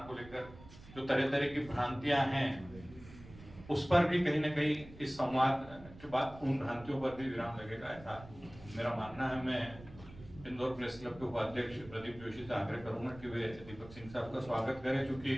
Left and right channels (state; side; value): noise; right; rumble, 18 dB below the sound